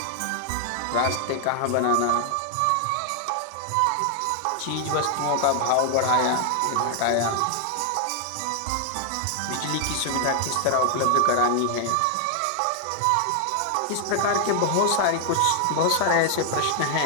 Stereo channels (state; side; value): different; both; correlation 0.00